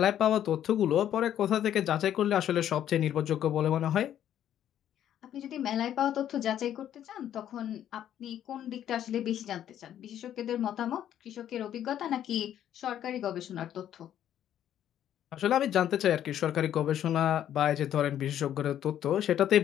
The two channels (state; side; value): quieter; right; 10.8 dB